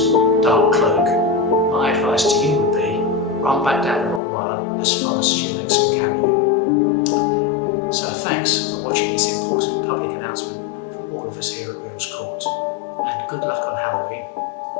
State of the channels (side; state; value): right; drops out; at 4.2 s